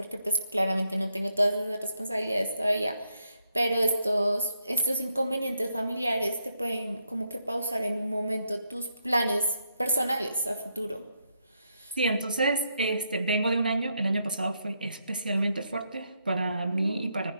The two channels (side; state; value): both; inverted; correlation -0.79